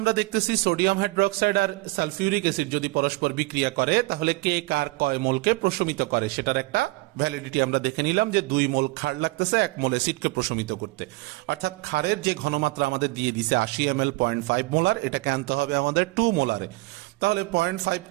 দেখতেছি সোডিয়াম হাইড্রোক্সাইড আর সালফিউরিক অ্যাসিড যদি পরস্পর বিক্রিয়া করে তাহলে কে কার কয় মোলকে প্রশমিত করে সেটার একটা ভ্যালিডিটি আমরা দেখে নিলাম, যে 2 মোল ক্ষার লাগতেছে 1 মোল অ্যাসিডকে প্রশমিত করতে। অর্থাৎ ক্ষারের যে ঘনমাত্রা আমাদের দিয়ে দিছে 80 ml 0.5 মোলার, এটাকে আনতে হবে আমাদের 2 মোলারে। তাহলে 0.5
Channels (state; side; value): quieter; left; 22.8 dB